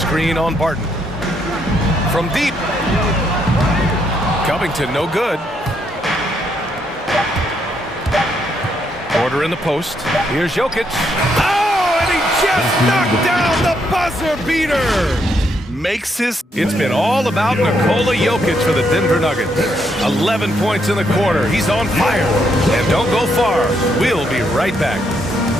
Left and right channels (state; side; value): normal; both; correlation 0.75